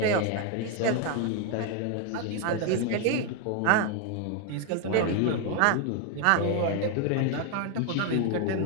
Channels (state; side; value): different; both; correlation 0.01